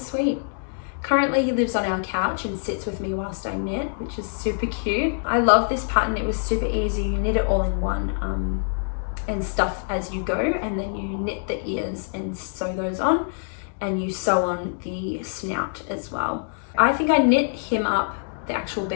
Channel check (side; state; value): right; silent; digital silence